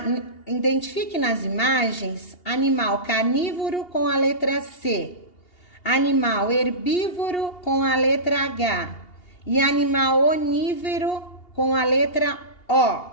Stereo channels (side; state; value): right; late; 2.8 ms